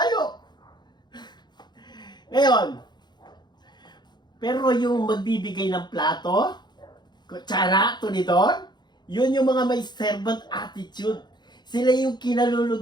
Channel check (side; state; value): right; late; 0.21 ms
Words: Ngayon, pero yung magbibigay ng plato, kutsara, tuniton, yun yung mga may servant attitude. Sila yung